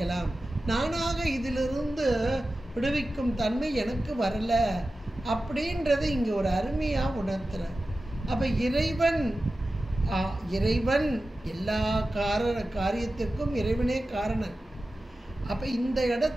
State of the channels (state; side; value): normal; both; correlation 0.94